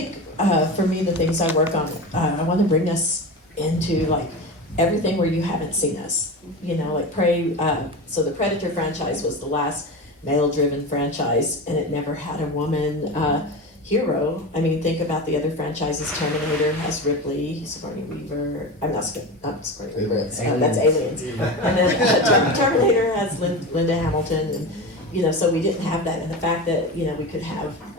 for me, the things I work on, I want to bring us into like everything where you haven't seen us. Like Prey. So the Predator franchise was the last male-driven franchise, and it never had a woman hero. I mean, think about the other franchises. Terminator has Ripley, Sigourney Weaver. I'm not Sigourney Weaver. That's Aliens. And then Terminator has Linda Hamilton, and so we didn't have that. And the fact that we could have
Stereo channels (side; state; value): both; normal; correlation 0.25